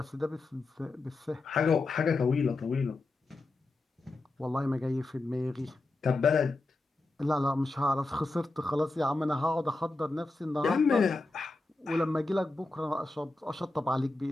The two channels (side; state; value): right; quieter; 3.1 dB